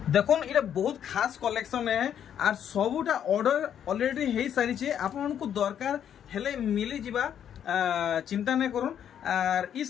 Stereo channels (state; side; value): quieter; right; 9.3 dB